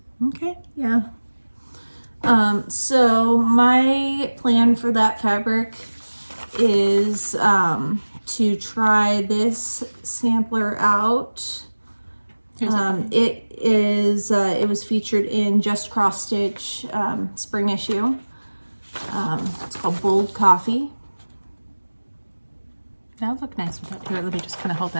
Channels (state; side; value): inverted; both; correlation -1.00